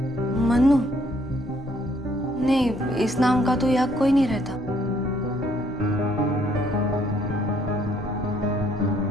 मन्नू? नहीं, इस नाम का तो यहाँ कोई नहीं रहता।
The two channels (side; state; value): both; normal; correlation 0.66